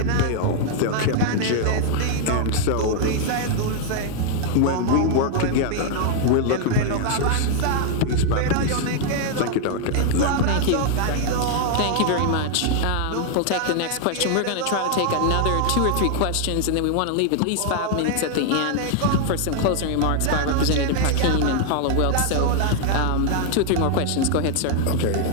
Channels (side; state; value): both; different; correlation 0.00